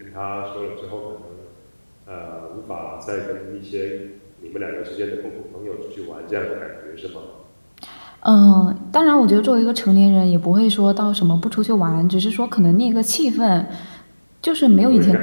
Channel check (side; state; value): both; inverted; correlation -1.00